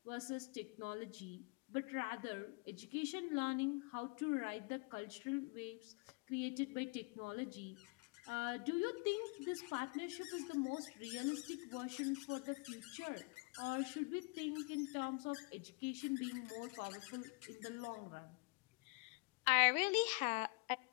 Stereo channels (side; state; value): right; quieter; 28.7 dB